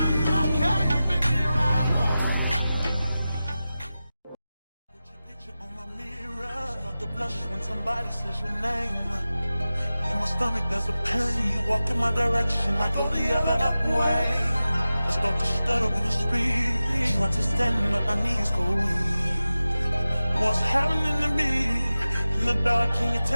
When somebody says your name, in my stomach there's a pain. You walk in my direction, I go the other way. I start to stutter when I speak, trying to stand but my knees go weak. What's happening to me in the dark? Can you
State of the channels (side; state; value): both; inverted; correlation -0.95